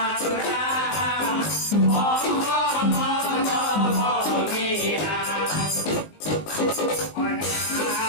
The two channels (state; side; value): late; right; 19 ms